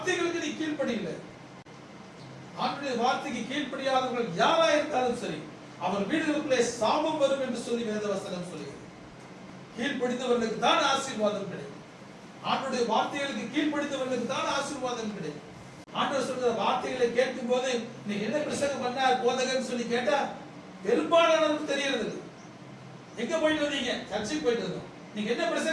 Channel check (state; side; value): identical; both; correlation 1.00